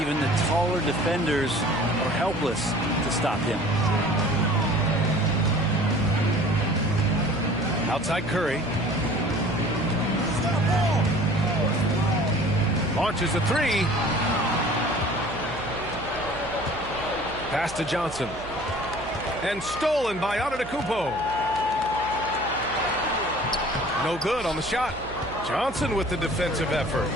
the taller defenders are helpless to stop him. Outside Curry. Launches a three. Pass to Johnson. And stolen by Antetokounmpo. No good on the shot. Johnson with the defensive effort.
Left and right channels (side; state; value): right; noise; hum, 16 dB below the sound